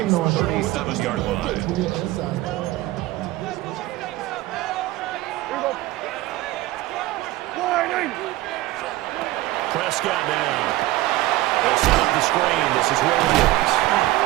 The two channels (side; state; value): left; quieter; 17.4 dB